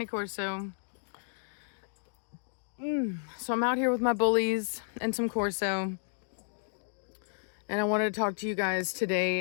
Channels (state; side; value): silent; right; digital silence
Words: Corso. So I'm out here with my bullies and some Corso. And I wanted to talk to you guys